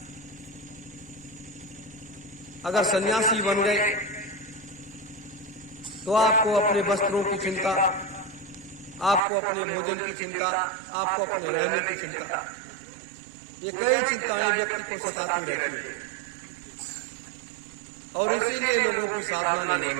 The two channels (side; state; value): left; drops out; at 9.2 s